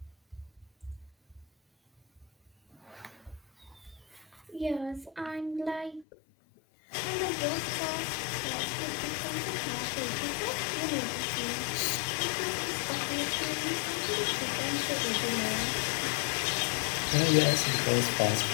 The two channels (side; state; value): right; drops out; at 6.1 s